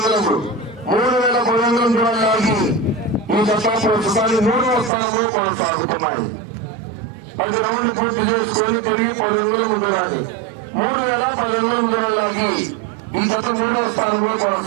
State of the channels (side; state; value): left; drops out; at 4.9 s